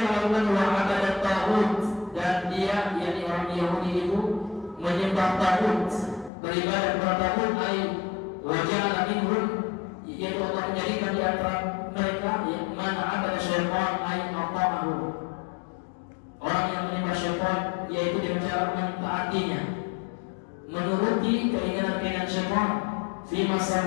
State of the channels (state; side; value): drops out; right; at 6.3 s